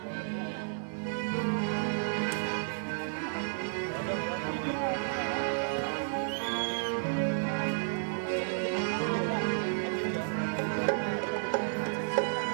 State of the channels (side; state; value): left; silent; digital silence